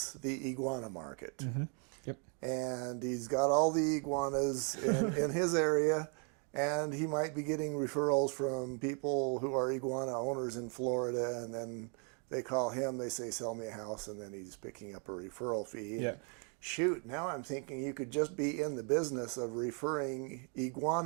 the iguana market. Mm-hmm. Yep. And he's got all the iguanas in his area, and he might be getting referrals from people who are iguana owners in Florida, and then they call him, they say, sell me a house, and then he's picking up a referral fee. Yeah. And shoot, now I'm thinking you could just be in the business of referring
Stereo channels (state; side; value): quieter; left; 39.1 dB